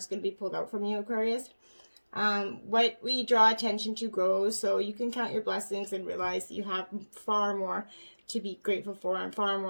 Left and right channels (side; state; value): both; inverted; correlation -1.00